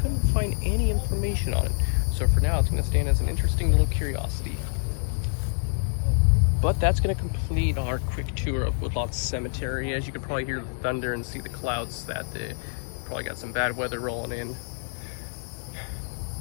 find any information on it. So for now, it's going to stand as an interesting little curiosity. But that's going to complete our quick tour of Woodlawn Cemetery. As you can probably hear the thunder and see the clouds, that they probably got some bad weather rolling in.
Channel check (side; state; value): right; silent; 61 dB below the other